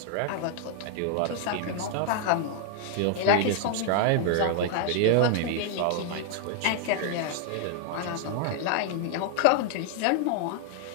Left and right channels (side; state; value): both; different; correlation 0.00